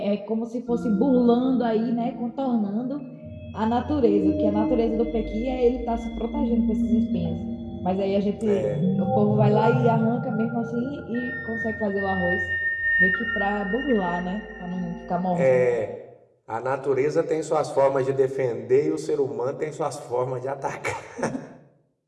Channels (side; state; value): both; identical; correlation 1.00